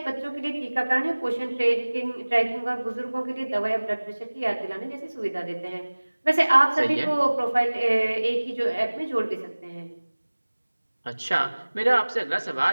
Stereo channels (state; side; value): inverted; both; correlation -1.00